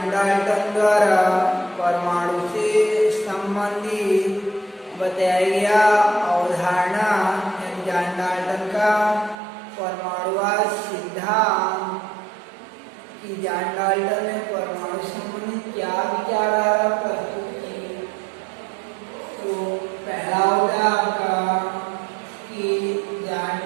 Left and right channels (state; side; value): drops out; left; at 9.3 s